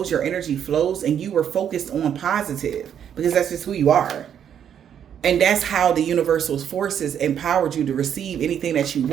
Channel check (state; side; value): quieter; left; 9.0 dB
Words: your energy flows, and you were focused on positive, because that's just who you are. And that's how the universal forces empowered you to receive anything that you